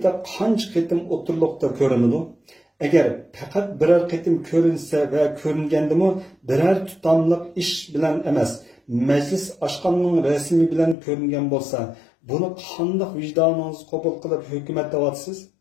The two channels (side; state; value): right; drops out; at 11.0 s